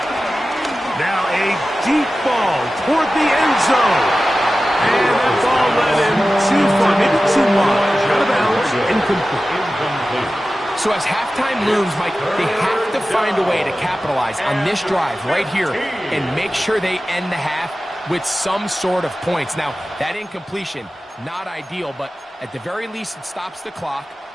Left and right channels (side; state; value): both; normal; correlation 0.95